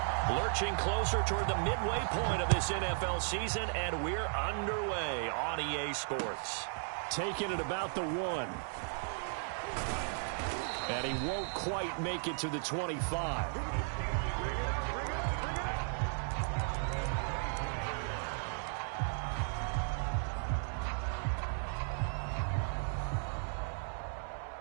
Lurching closer toward the midway point of this NFL season, and we're underway on EA Sports. Taking it about the 1. And he won't quite make it to the 25.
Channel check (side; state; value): left; silent; 54 dB below the other